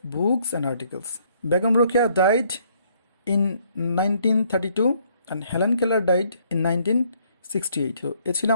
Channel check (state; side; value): inverted; both; correlation -0.66